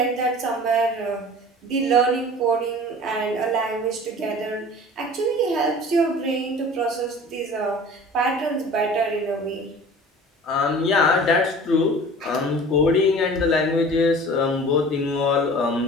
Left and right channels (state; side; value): normal; both; correlation 0.42